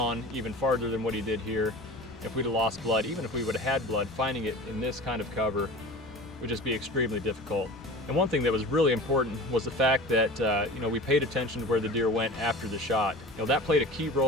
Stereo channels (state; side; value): normal; both; correlation 0.37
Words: even farther than what he did here, if we'd have lost blood, even if we would have had blood, finding it in this kind of cover would just be extremely difficult. And one thing that was really important was the fact that we paid attention to where the deer went after the shot. That played a key